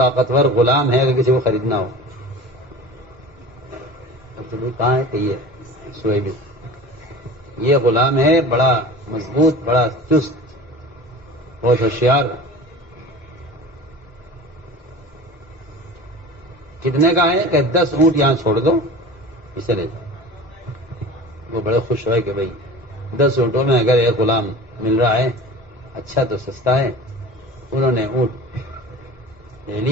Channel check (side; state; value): both; normal; correlation 0.37